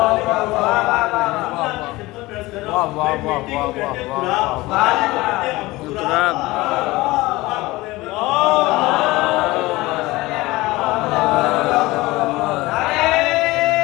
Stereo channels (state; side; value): quieter; right; 20.2 dB